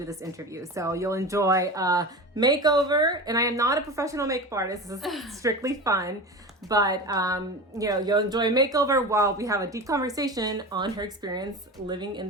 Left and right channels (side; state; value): both; normal; correlation 0.28